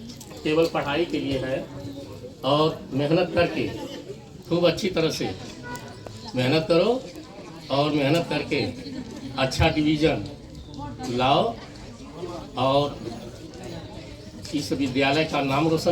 केवल पढ़ाई के लिए है, और मेहनत करके खूब अच्छी तरह से मेहनत करो, और मेहनत करके अच्छा डिवीजन लाओ और इस विद्यालय का नाम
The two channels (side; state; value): both; identical; correlation 1.00